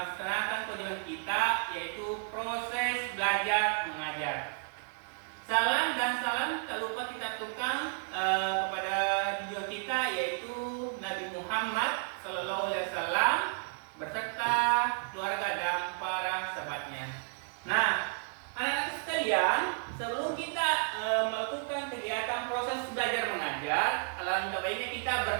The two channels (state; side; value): silent; left; 56 dB below the other